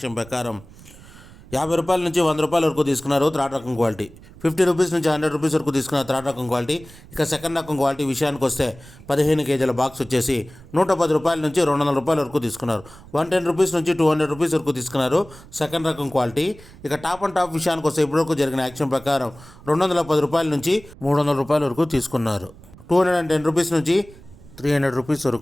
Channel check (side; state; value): right; noise; rumble, 21 dB below the sound